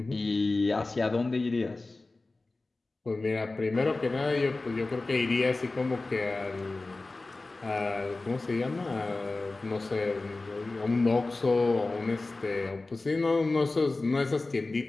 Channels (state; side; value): quieter; right; 3.3 dB